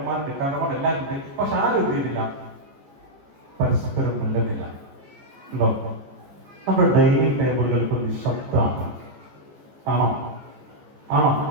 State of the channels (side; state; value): left; late; 14 ms